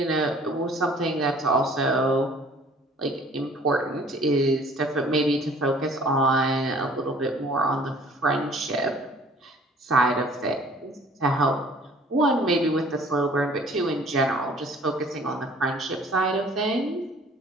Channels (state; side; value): normal; both; correlation 0.53